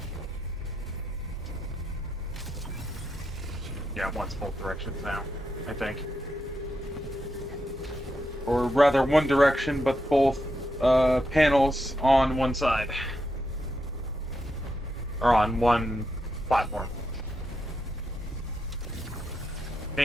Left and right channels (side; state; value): both; normal; correlation 0.83